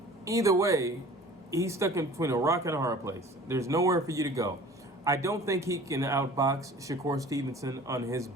Either way, he's stuck in between a rock and a hard place. There's nowhere for you to go. I don't think he can outbox Shakur Stevenson on his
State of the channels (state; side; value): normal; both; correlation 0.45